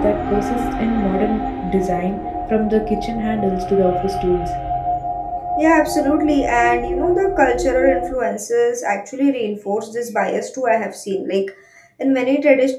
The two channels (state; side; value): identical; both; correlation 1.00